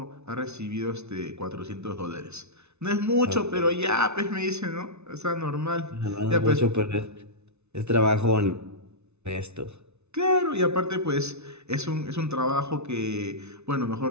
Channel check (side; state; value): left; late; 0.81 ms